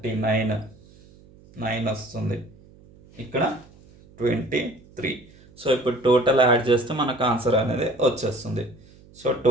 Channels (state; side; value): noise; right; hum, 25 dB below the sound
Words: 9 వస్తుంది. ఇక్కడ 23. సో ఇప్పుడు టోటల్ యాడ్ చేస్తే మనకు ఆన్సర్ అనేది వచ్చేస్తుంది. సో